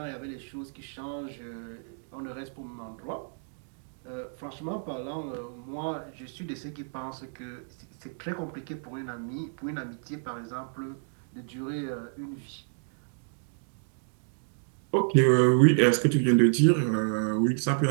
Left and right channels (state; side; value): silent; left; digital silence